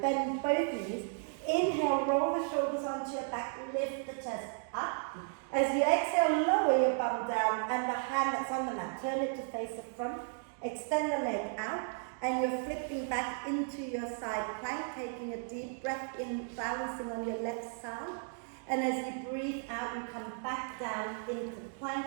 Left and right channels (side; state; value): left; silent; 55 dB below the other